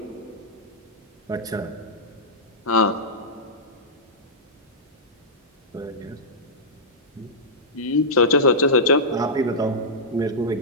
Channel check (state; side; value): normal; both; correlation -0.12